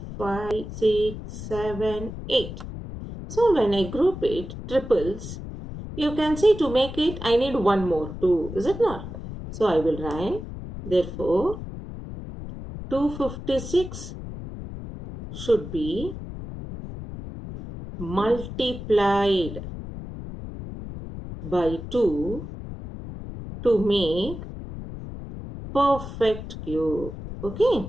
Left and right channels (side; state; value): left; noise; rumble, 10 dB below the sound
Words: 5, 6, 7, 8. So when I group it, triples, you can see to make it, I need one more 2, is it not? So I will write, therefore, 256 should be multiplied by 2 to make perfect cube. Okay.